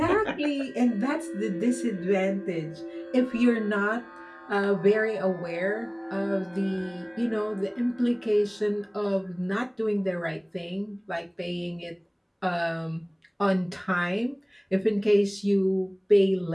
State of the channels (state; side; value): identical; both; correlation 1.00